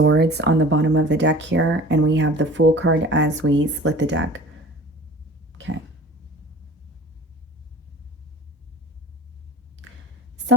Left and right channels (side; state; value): both; normal; correlation 0.44